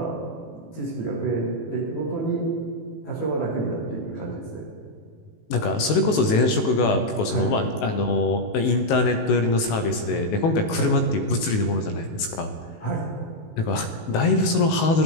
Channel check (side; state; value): right; late; 19 ms